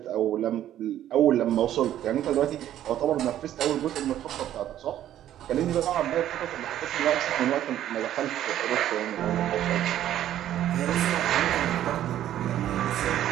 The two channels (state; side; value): quieter; left; 11.9 dB